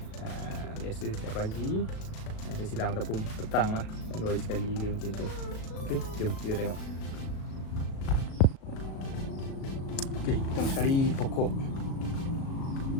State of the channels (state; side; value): late; right; 37 ms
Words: Biasa setiap pagi saya siram ataupun petang lah, 2 hari sekali dia macam tu. Okey, jom kita tengok. Okey, pertama sekali pokok